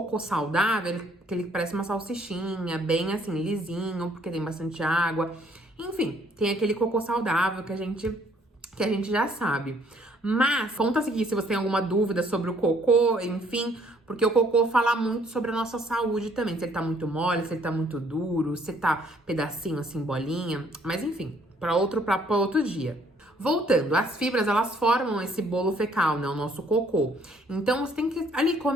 saudável, ele parece uma salsichinha, bem assim, lisinho, porque tem bastante água. Enfim, tem aquele cocô saudável que a gente já sabe. Mas, conta aqui se você tem alguma dúvida sobre o cocô, enfim, porque o cocô fala muito sobre a nossa saúde também. Se ele tá muito mole, se ele tá muito duro, se tá pedacinho assim, bolinha. Mas enfim, para outro dia. Voltando, as fibras, elas formam esse bolo fecal, né, o nosso cocô. Então, você tem que ali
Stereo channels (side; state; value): both; normal; correlation 0.64